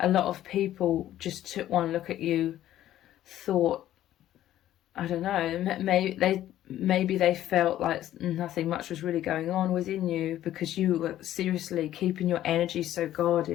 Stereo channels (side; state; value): right; quieter; 12.8 dB